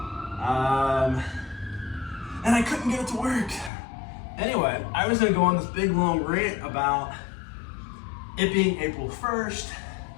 And I couldn't get it to work. Anyway, I was gonna go on this big long rant about it being April 1st,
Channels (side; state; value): right; drops out; at 3.7 s